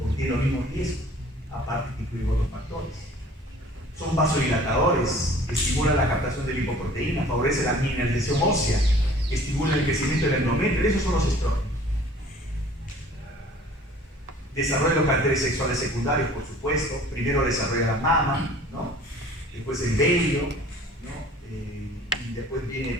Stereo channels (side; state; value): both; normal; correlation 0.50